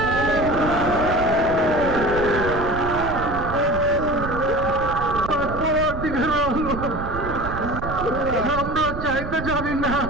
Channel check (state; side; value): noise; right; rumble, 8 dB below the sound